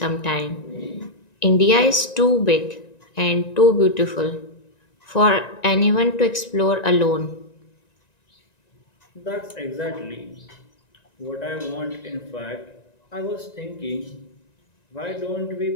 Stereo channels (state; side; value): late; right; 1.9 ms